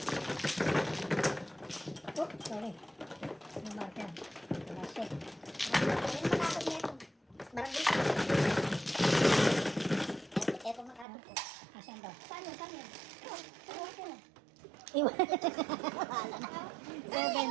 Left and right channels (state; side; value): drops out; left; at 11.1 s